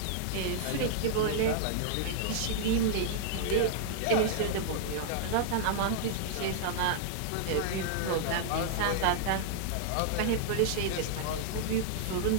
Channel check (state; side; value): different; both; correlation -0.01